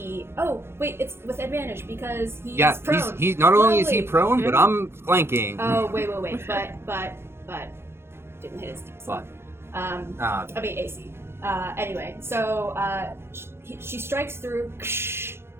Oh, wait, it's with advantage because he's prone. He's not only is he prone, but I'm flanking. Oh, wait. But didn't hit his DC. What? I mean AC. Anyway, so she strikes through.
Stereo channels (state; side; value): late; left; 0.12 ms